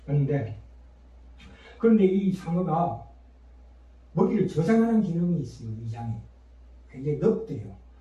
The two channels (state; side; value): identical; both; correlation 1.00